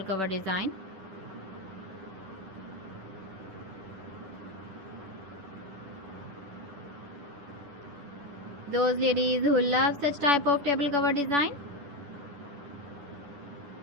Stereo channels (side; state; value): left; late; 10 ms